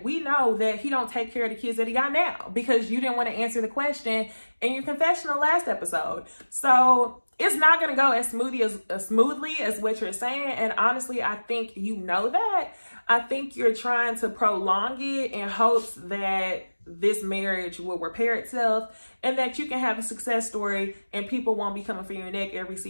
we know that he don't take care of the kids that he got now because you didn't want to answer the question in your confessional last episode. So it's not going to go as smoothly as what you're saying. And honestly, I think you know that. I think you're trying to prolong it in hopes that this marriage will repair itself and that you can have a success story and people won't be coming for your neck every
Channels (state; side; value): inverted; both; correlation -1.00